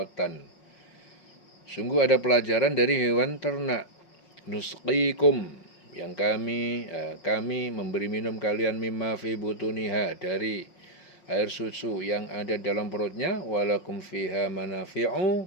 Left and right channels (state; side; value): late; right; 5.5 ms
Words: sungguh ada pelajaran dari hewan ternak. Nusqikum, yang kami memberi minum kalian, mimma fi butuniha, dari air susu yang ada dalam perutnya, walakum fiha